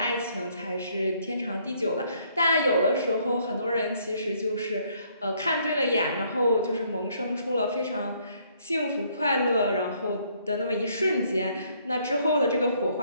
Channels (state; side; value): inverted; both; correlation -0.66